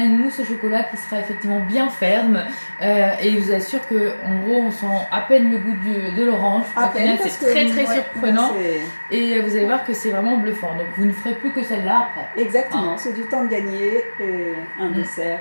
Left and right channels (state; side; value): inverted; both; correlation -1.00